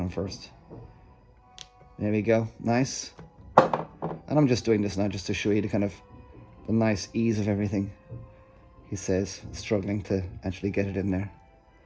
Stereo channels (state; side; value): identical; both; correlation 1.00